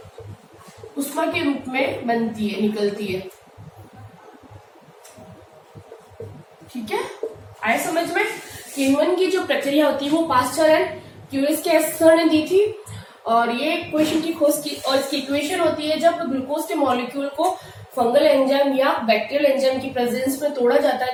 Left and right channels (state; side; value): identical; both; correlation 1.00